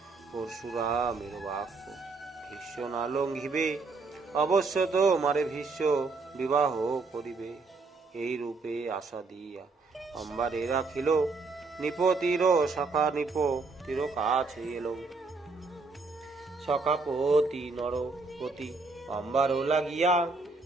পরশুরামের বাক্য ভীষ্ম না লঙ্ঘিবে, অবশ্য তো মারে ভীষ্ম বিবাহ করিবে। এই রূপে আশা দিয়া অম্বারে রাখিল নিপ তীর সখা নিপ তীর কাছে এলো সখাপতি নরপতি অম্বার লাগিয়া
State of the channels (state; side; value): quieter; left; 3.9 dB